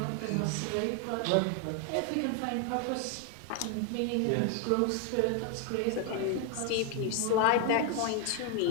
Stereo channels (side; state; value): both; different; correlation 0.01